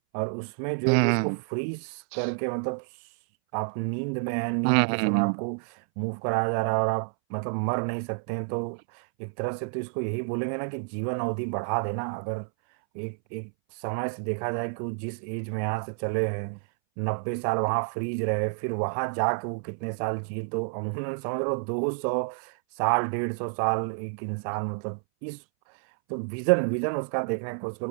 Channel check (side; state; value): left; silent; 59 dB below the other